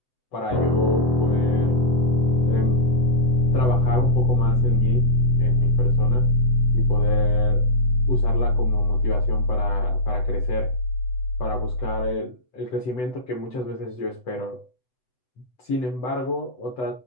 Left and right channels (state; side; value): late; right; 7.9 ms